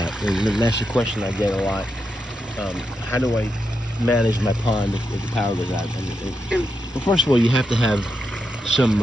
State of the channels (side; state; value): both; normal; correlation 0.85